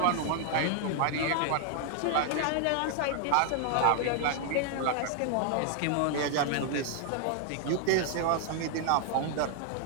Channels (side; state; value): both; different; correlation 0.00